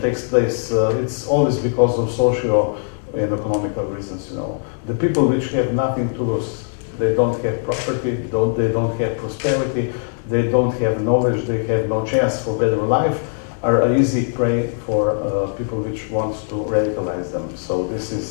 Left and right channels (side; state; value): right; silent; digital silence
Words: takes place? It's always because of social and economical reasons. You know, the people which have nothing to lose, they don't have property, they don't have prosperity, they don't have knowledge, they have no chance for better life, are an easy prey for people which wants to radicalize them. So this